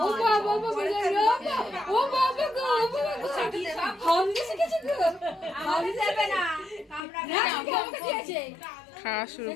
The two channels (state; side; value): drops out; right; at 7.0 s